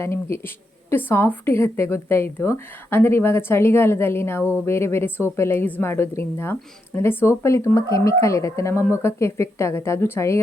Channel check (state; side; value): normal; both; correlation 0.83